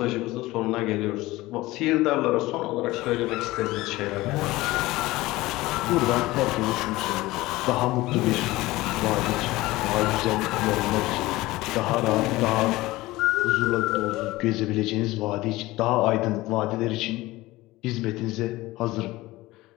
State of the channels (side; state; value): right; quieter; 19.0 dB